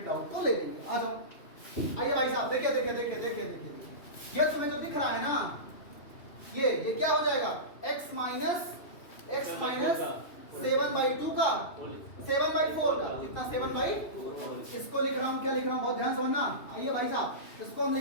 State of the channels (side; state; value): right; late; 2.8 ms